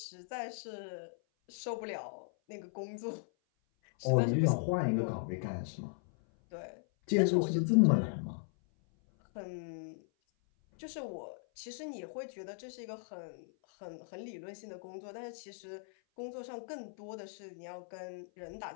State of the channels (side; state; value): right; silent; 53 dB below the other